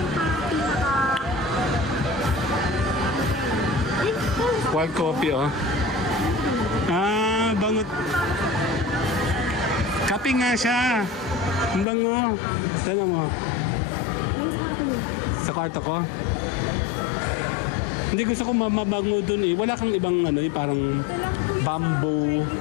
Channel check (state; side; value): drops out; right; at 11.9 s